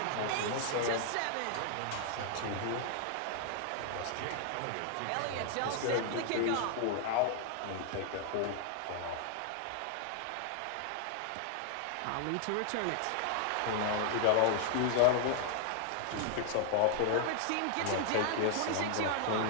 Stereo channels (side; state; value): both; different; correlation 0.00